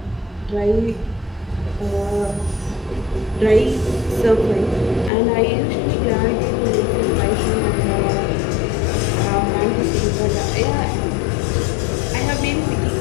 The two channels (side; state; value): right; drops out; at 5.1 s